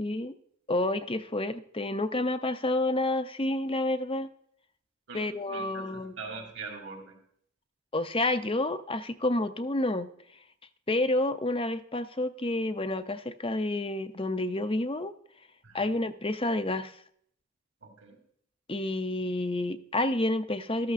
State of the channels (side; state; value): both; normal; correlation 0.49